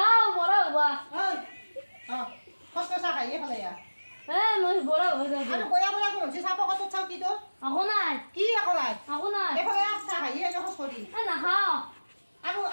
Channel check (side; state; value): both; inverted; correlation -1.00